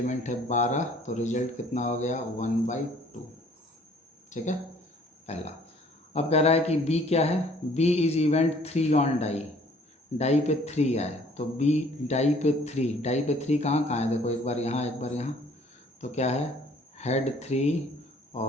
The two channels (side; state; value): both; normal; correlation 0.57